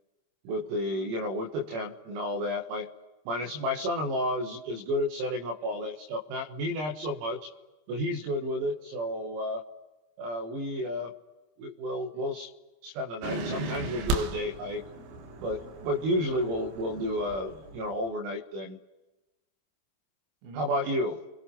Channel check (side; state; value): left; late; 26 ms